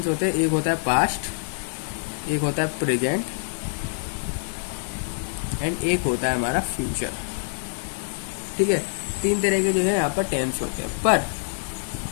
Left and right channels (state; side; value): silent; right; 61 dB below the other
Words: होते हैं? एक होता है पास्ट, एक होता है प्रेजेंट एंड एक होता है हमारा फ्यूचर। ठीक है, 3 तरह के जो है यहाँ पर टेंस होते हैं।